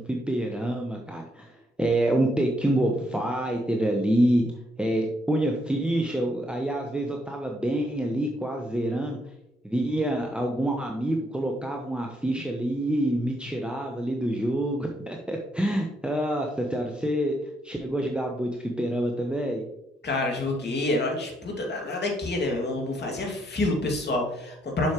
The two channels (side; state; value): both; normal; correlation 0.75